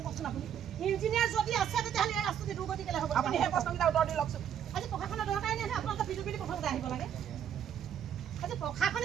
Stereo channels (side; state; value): left; quieter; 9.2 dB